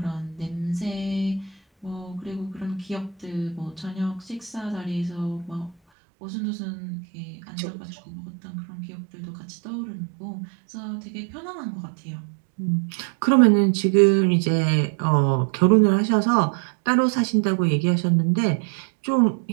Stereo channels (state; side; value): drops out; left; at 5.8 s